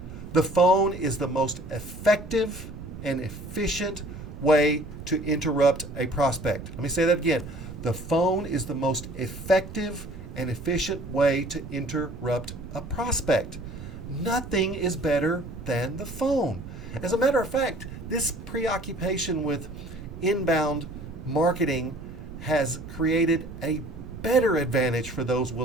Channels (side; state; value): right; noise; rumble, 12 dB below the sound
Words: The phone is the most effective and efficient way to interrupt a prospect. Let me say that again. The phone is the most effective and efficient way to interrupt a prospect. Nothing is better than the phone. As a matter of fact, this preoccupation with inbound marketing has created a better advantage for those